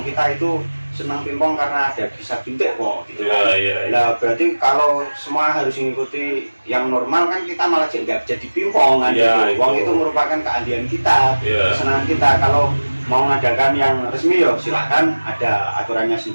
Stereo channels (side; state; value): both; inverted; correlation -1.00